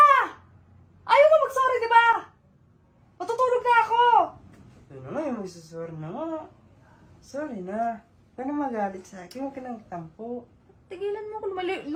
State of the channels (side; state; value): both; identical; correlation 1.00